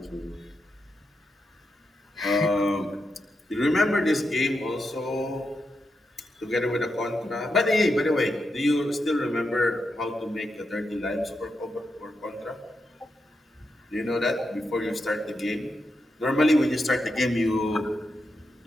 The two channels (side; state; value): both; normal; correlation 0.85